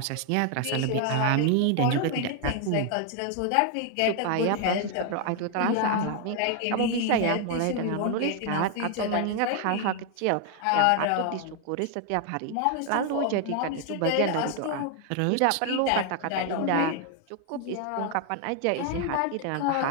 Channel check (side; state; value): both; different; correlation 0.00